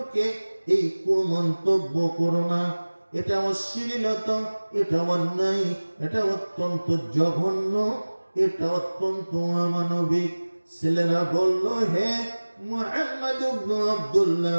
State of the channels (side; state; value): both; inverted; correlation -1.00